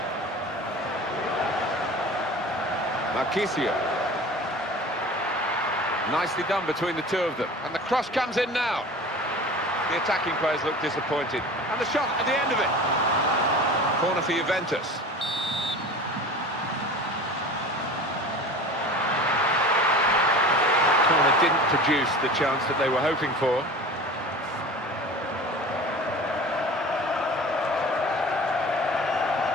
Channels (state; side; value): normal; both; correlation 0.38